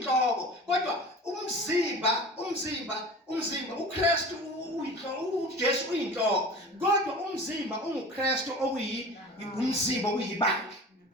kodwa umzimba uKristu uJesu uyinhloko kodwa umzimba unguKristu umzimba uyibandla.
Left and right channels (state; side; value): normal; both; correlation 0.38